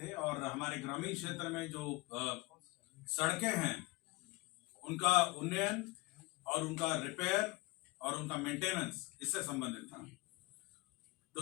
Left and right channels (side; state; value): right; quieter; 22.7 dB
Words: और हमारे ग्रामीण क्षेत्र में जो सड़कें हैं उनका उन्नयन और उनका रिपेयर और उनका मेंटेनेंस इससे संबंधित था।